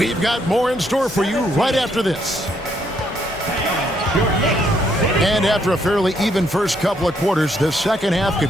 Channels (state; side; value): normal; both; correlation 0.72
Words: got more in store for you right after this. And after a fairly even first couple of quarters, the second half